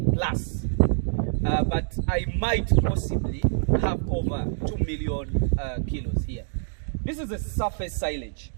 plus, but I might possibly have over 2 million kilos here. This is a surface silage.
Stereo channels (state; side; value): silent; left; digital silence